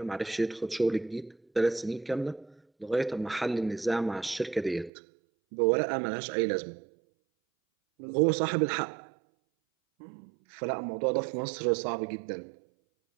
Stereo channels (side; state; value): left; drops out; at 4.9 s